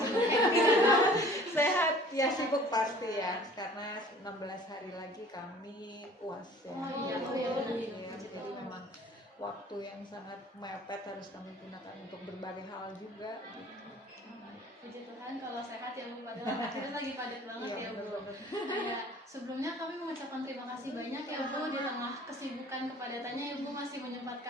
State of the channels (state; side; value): normal; both; correlation 0.50